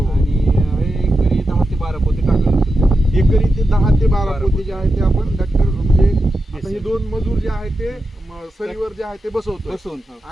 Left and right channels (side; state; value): both; normal; correlation 0.89